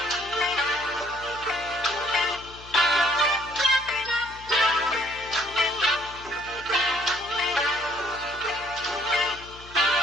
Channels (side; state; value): left; noise; hum, 19 dB below the sound